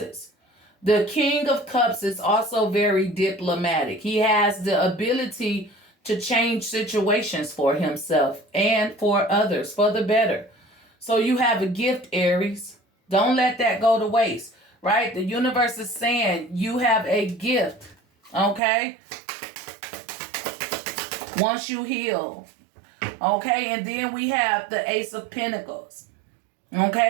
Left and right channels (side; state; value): left; drops out; at 18.6 s